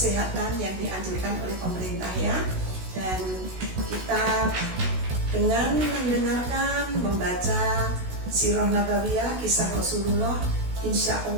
yang dianjurkan oleh pemerintah ya. Dan kita dengan mendengarkan, membaca Sirah Nabawiyah, kisah Rasulullah, insya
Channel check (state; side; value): late; left; 16 ms